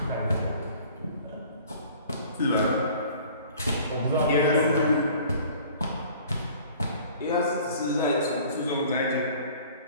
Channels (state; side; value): inverted; both; correlation -0.50